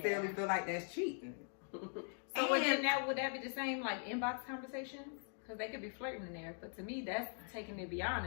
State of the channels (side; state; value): right; silent; 50 dB below the other